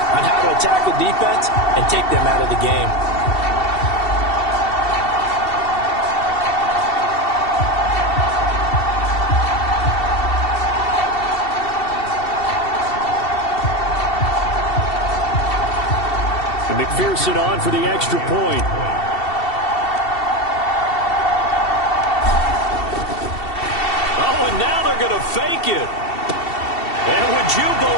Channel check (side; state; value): right; late; 2.7 ms